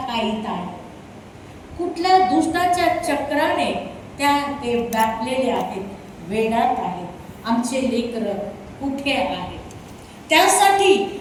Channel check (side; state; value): both; identical; correlation 1.00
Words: आहे, कुठल्या दुष्टाच्या चक्राने ते व्यापलेले आहेत, वेडात आहेत. आमचे लेकर कुठे आहेत, त्यासाठी